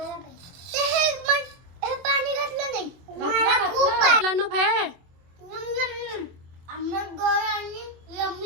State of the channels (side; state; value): left; late; 24 ms